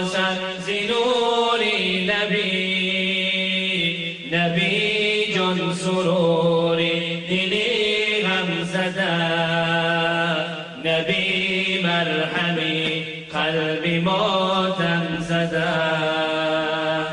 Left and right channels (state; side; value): identical; both; correlation 1.00